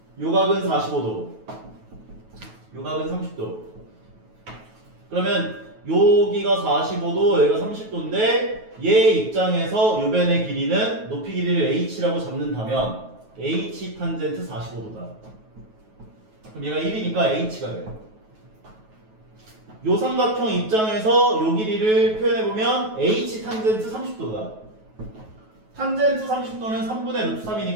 요각은 45도, 요각은 30도. 그러면 여기가 45도, 여기가 30도인데 얘 입장에서 요변의 길이는 높이 길이를 h라고 잡는다면 h 탄젠트 45도다. 그럼 얘가 1이니까 h가 돼. 요 삼각형 입장에서 요 길이를 표현해보면 h 탄젠트 30도다. 탄젠트 30도는 3분의 루트 3이니까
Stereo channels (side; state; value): left; late; 9.2 ms